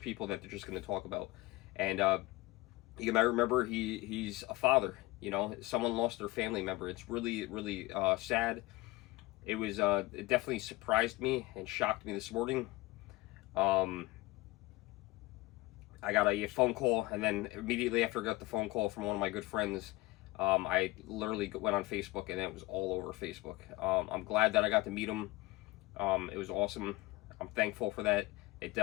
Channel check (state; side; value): quieter; right; 19.8 dB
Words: that they're just going to talk about. And you might remember he's a father. You know, someone lost their family member. It's really, really sad. It definitely surprised me and shocked me this morning. Um, I got a phone call, and then immediately after I got the phone call from one of my good friends, I literally went on Facebook, and it was all over Facebook. I'm glad that I got to meet him. It was awesome. I'm thankful for that. It